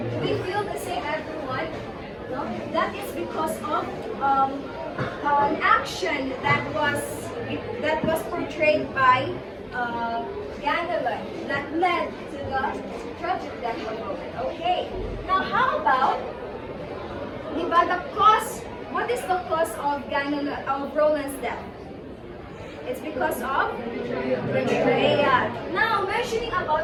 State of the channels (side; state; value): both; identical; correlation 1.00